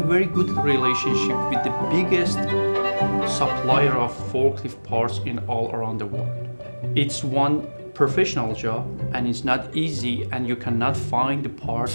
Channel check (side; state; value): both; inverted; correlation -1.00